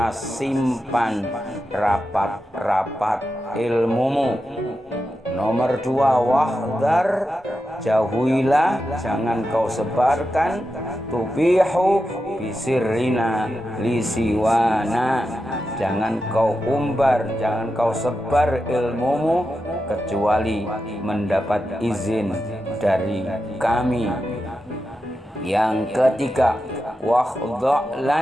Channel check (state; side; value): normal; both; correlation 0.89